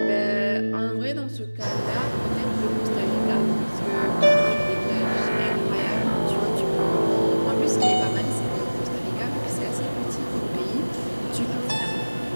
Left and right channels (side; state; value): both; inverted; correlation -1.00